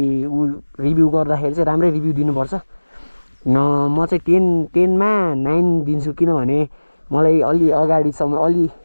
रिभ्यू गर्दाखेरि चाहिँ राम्रै रिभ्यू दिनुपर्छ। म चाहिँ 10मा 9 दिन्छु। किनभने मलाई अलि अगाडिसम्म, अलि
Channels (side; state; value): both; inverted; correlation -1.00